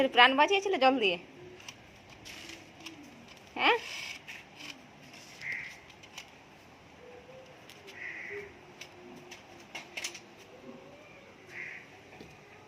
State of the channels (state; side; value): identical; both; correlation 1.00